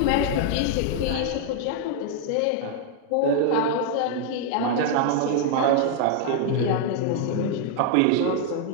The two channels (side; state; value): both; different; correlation 0.00